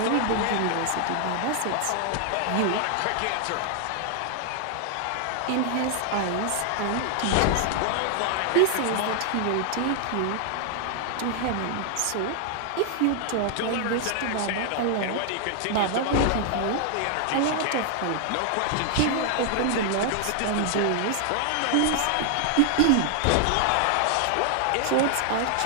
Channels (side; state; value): both; different; correlation 0.00